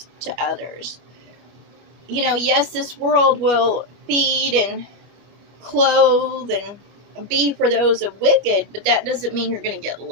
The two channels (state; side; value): late; left; 25 ms